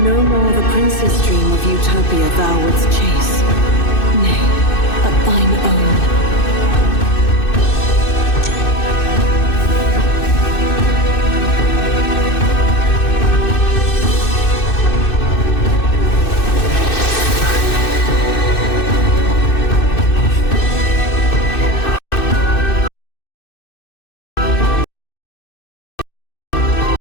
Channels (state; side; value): late; right; 2.6 ms